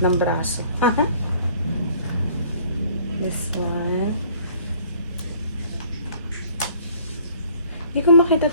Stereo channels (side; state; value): both; inverted; correlation -0.55